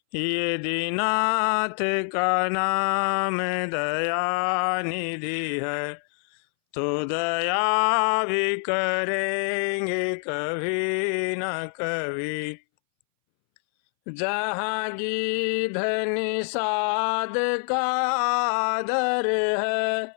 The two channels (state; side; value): silent; right; 62 dB below the other